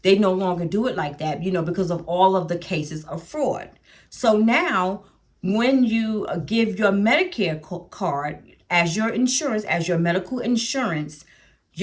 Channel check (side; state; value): both; identical; correlation 1.00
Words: they no longer do it like that, because of all of the cases of fraud. So now, when you give your Medicare card as your insurance, as your medical insurance,